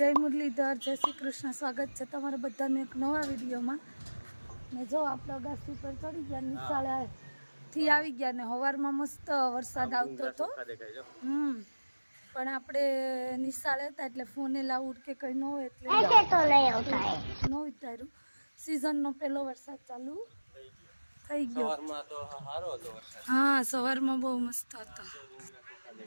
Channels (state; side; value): inverted; both; correlation -1.00